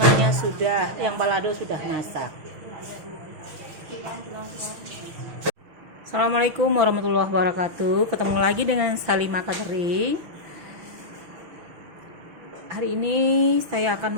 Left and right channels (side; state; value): left; late; 6.2 ms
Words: yang balado sudah masak. Assalamualaikum warahmatullahi wabarakatuh. Ketemu lagi dengan Salimah Catering. Hari ini saya akan